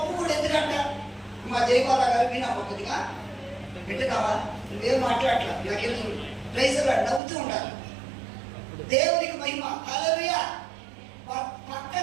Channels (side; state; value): left; drops out; at 7.2 s